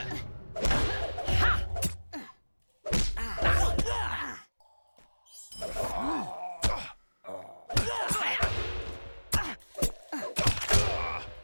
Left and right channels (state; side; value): inverted; both; correlation -1.00